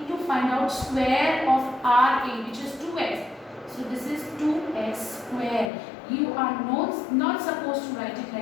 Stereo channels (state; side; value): drops out; right; at 5.7 s